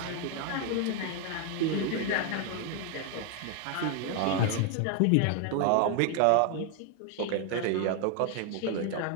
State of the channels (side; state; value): both; different; correlation 0.01